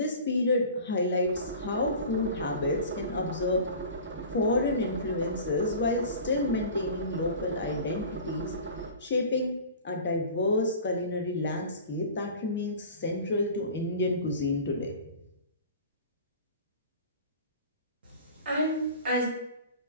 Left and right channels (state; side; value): inverted; both; correlation -0.40